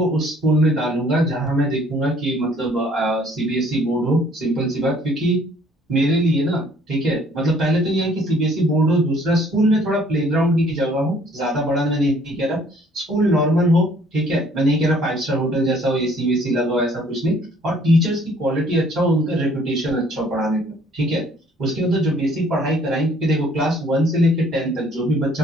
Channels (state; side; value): normal; both; correlation 0.59